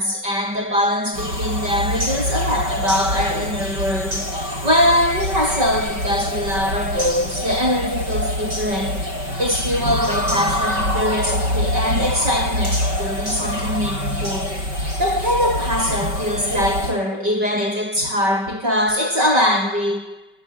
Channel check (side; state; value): left; late; 5.2 ms